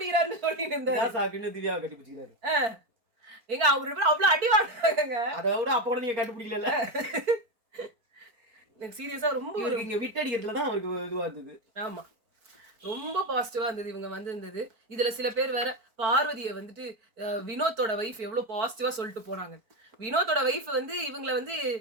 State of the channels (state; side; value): late; left; 4.4 ms